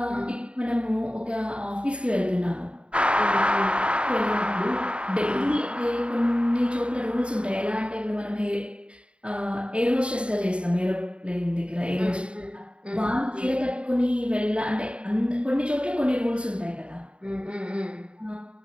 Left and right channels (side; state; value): left; late; 0.056 ms